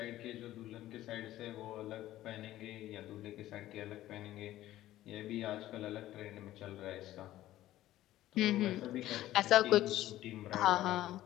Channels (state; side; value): quieter; right; 14.5 dB